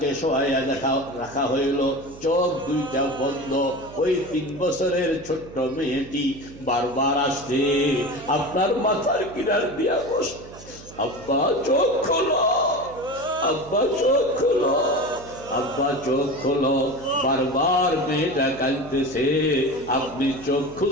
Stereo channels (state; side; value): noise; right; hum, 18 dB below the sound